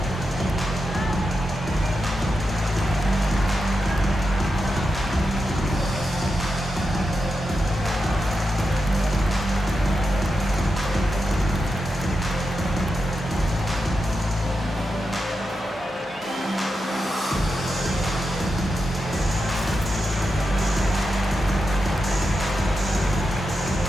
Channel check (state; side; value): normal; both; correlation 0.88